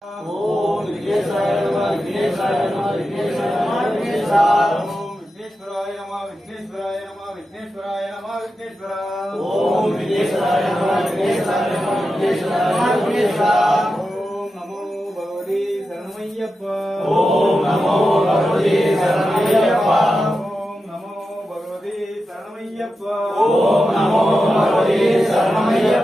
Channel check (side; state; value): both; normal; correlation 0.90